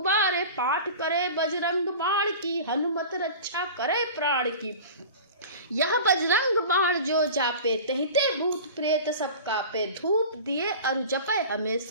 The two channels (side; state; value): both; inverted; correlation -0.37